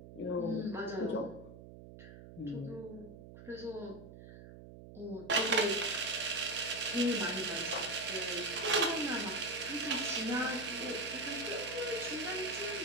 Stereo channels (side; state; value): right; noise; hum, 15 dB below the sound